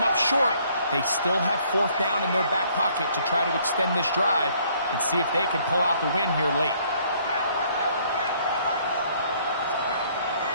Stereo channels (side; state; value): both; inverted; correlation -0.63